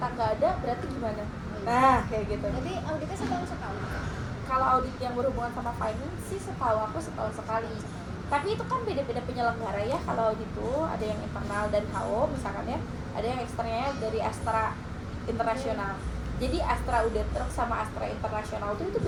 nggak ada berarti gimana, nah kayak gitu. Jadi auditnya setahun sekali. Kalau audit yang berhubungan sama finance sih setahu aku setahun sekali, tapi itu kan beda-beda penyelenggara ya. Kalau audit itu ada yang internal dari HO misalkan ya, ada yang eksternalnya dari Astra Internasional. Jadi Astra Auditor sama Astra Internasional itu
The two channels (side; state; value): both; identical; correlation 1.00